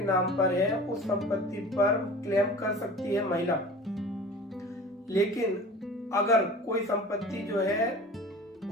नाम पर है, उस संपत्ति पर क्लेम कर सकती है महिला। लेकिन अगर कोई संपत्ति जो है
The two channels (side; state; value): both; normal; correlation 0.40